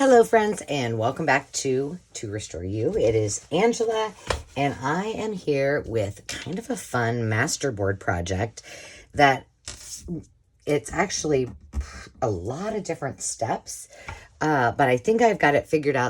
Hello friends, and welcome back to Restore You. It is Angela, and I am here with kind of a fun masterboard project that it's actually a lot of different steps, but I think I've got it figured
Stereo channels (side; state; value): both; identical; correlation 1.00